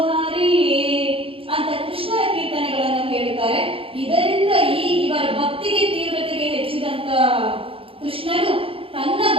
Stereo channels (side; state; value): left; late; 0.27 ms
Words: ಹರಿಯೇ ಅಂತ ಕೃಷ್ಣನ ಕೀರ್ತನೆಗಳನ್ನು ಹೇಳುತ್ತಾರೆ. ಇದರಿಂದ ಇವರ ಭಕ್ತಿಗೆ ತೀವ್ರತೆಗೆ ಹೆಚ್ಚಿದಂತ ಕೃಷ್ಣನು ತನ್ನ